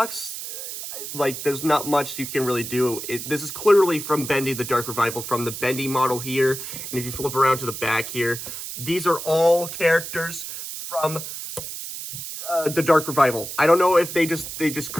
Like, there's not much you can really do. This is clearly from Bendy, the Dark Revival, from the Bendy model here. And if you flip around to the back here, these are all characters from the Dark Revival. I don't know if they just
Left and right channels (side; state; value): right; noise; hiss, 8 dB below the sound